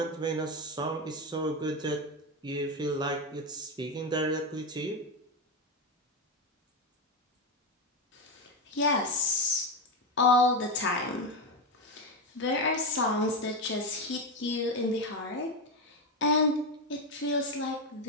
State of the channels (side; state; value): both; normal; correlation 0.12